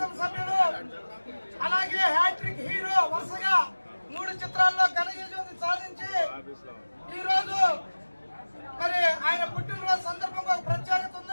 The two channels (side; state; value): both; inverted; correlation -1.00